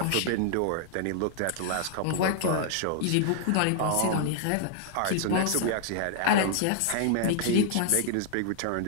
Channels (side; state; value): both; different; correlation -0.01